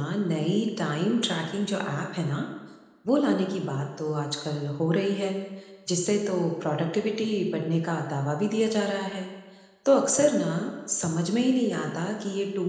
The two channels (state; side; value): identical; both; correlation 1.00